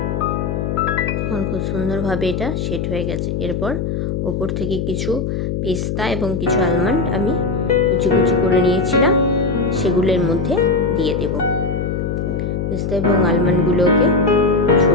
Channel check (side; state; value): left; noise; hum, 2 dB below the sound